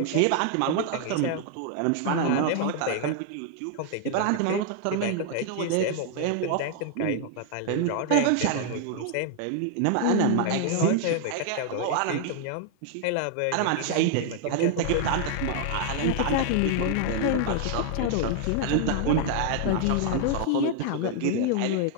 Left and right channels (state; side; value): different; both; correlation 0.00